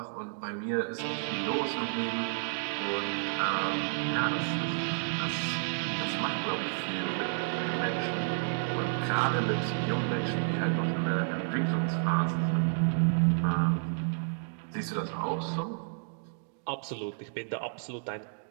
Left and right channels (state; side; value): silent; left; digital silence